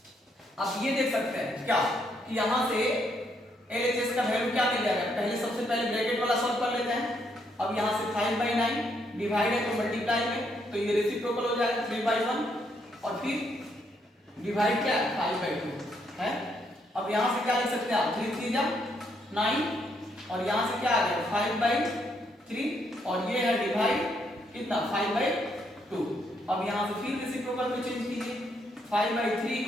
आप ये देख सकते हैं क्या कि यहां से LHS का वैल्यू क्या मिल जाएगा, पहले सबसे पहले ब्रैकेट वाला सॉल्व कर लेते हैं। अब यहां से 5/9 डिवाइड है तो मल्टीप्लाई में, तो ये रेसिप्रोकल हो जाएगा 3/1 और फिर डिवाइड क्या 5/2 है। अब यहां से क्या लिख सकते हैं आप, 3 3 जा 9 और यहां से क्या आ गया 5/3 और ये है डिवाइड कितना 5/2। अब यहां से फिर रेसिप्रोकल में चेंज कीजिए, 5/3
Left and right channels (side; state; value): both; normal; correlation 0.74